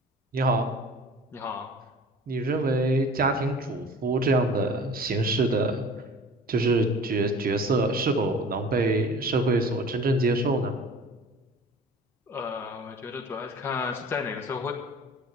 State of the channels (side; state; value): both; normal; correlation 0.43